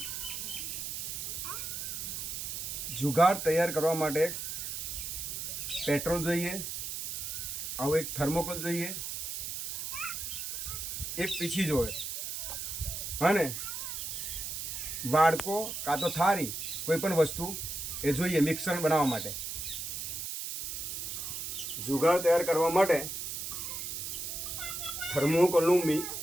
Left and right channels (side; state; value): right; noise; hiss, 5 dB below the sound